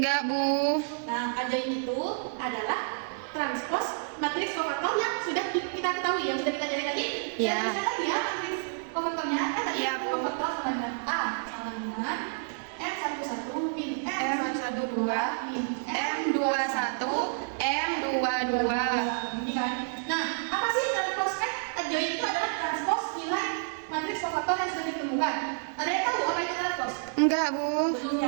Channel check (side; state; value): left; silent; 58 dB below the other